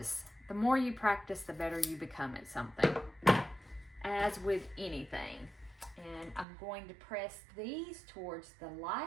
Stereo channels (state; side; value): drops out; left; at 6.5 s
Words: The more you practice, the better you become at something. As with anything. And I'm going to press these towards the